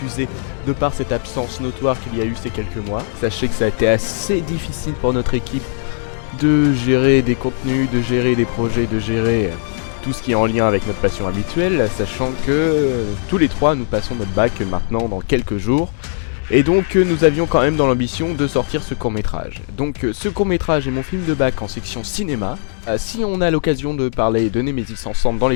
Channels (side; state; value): right; silent; digital silence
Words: de par cette absence notoire qu'il y a eu ces quelques mois. Sachez que ça a été assez difficile pour notre équipe de gérer des contenus, de gérer des projets, de gérer tout ce qui est en lien avec notre passion habituelle, sachant que tous les trois nous passons notre bac maintenant dans quelques jours. Et donc nous avions quand même dans l'ambition de sortir ce court-métrage. Donc ce court-métrage est mon film de bac en section cinéma. Si on a l'occasion de parler de Nemesis ensemble dans